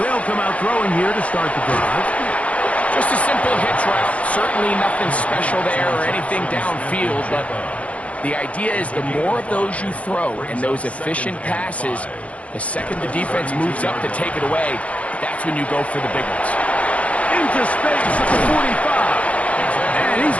come out throwing here to start the drive. Just a simple hitch route. Certainly nothing special there or anything downfield, but the idea is the more of those you throw and those efficient passes, the second the defense moves up to take it away, that's when you go for the big ones. Into space at the 45. And he's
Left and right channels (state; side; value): late; right; 0.065 ms